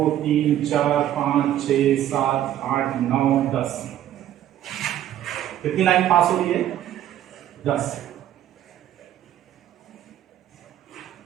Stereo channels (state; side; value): quieter; left; 11.9 dB